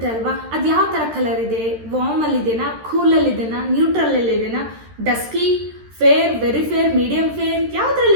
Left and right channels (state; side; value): late; left; 13 ms